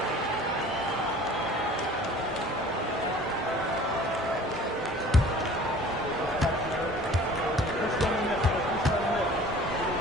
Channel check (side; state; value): both; normal; correlation 0.47